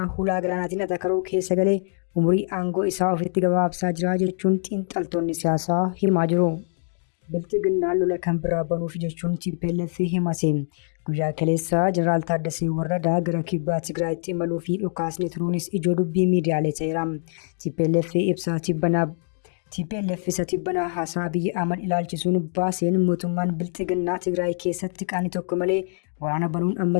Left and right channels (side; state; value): right; silent; 62 dB below the other